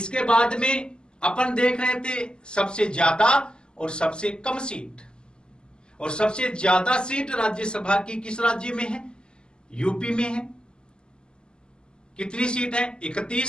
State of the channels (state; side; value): late; right; 0.050 ms